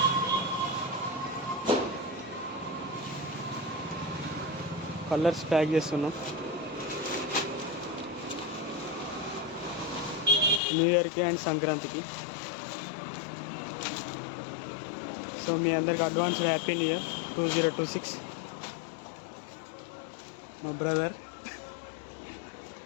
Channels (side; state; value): right; drops out; at 10.6 s